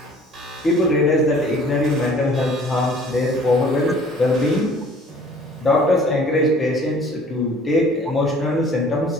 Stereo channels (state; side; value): normal; both; correlation 0.52